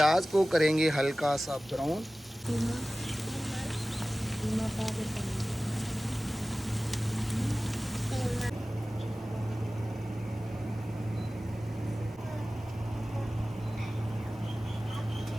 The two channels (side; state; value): both; normal; correlation 0.96